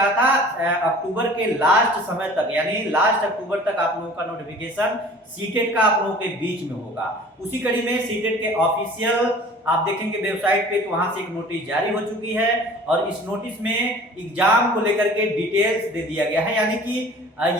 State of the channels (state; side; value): normal; both; correlation 0.46